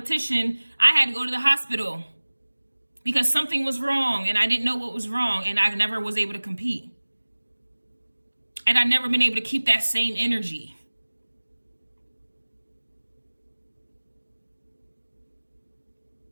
I had to go to the hospital because something was wrong and I didn't know what was wrong, and I never was able to compete. And I've never been able to keep that same energy.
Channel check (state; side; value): inverted; both; correlation -1.00